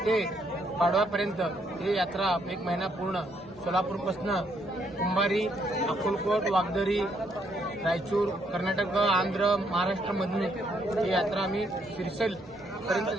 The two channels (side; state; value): both; normal; correlation 0.72